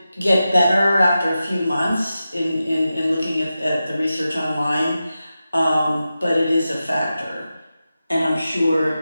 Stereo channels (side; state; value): both; inverted; correlation -0.92